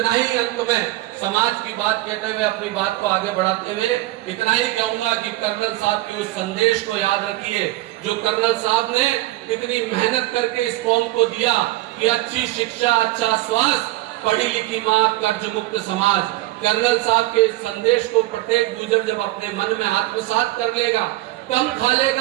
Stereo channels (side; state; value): left; quieter; 17.8 dB